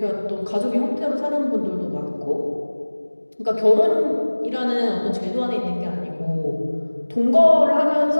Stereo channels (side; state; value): both; inverted; correlation -1.00